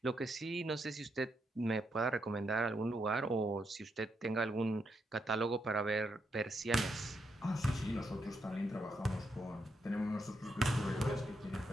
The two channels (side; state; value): both; normal; correlation 0.80